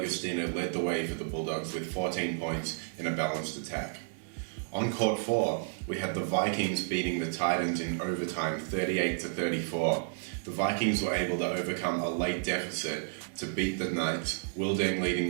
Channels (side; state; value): left; silent; 57 dB below the other